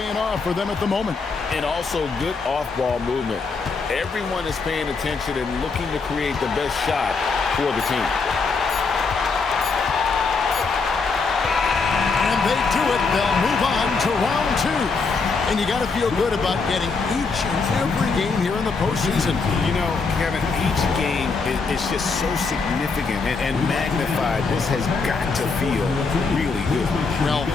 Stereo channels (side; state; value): right; quieter; 4.5 dB